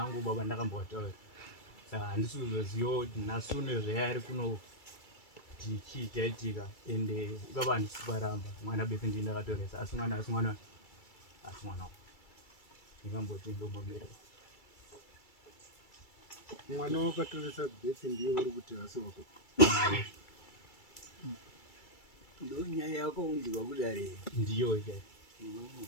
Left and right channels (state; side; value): late; right; 2.3 ms